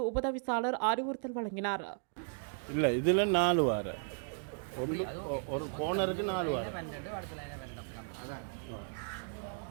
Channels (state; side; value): silent; left; 54 dB below the other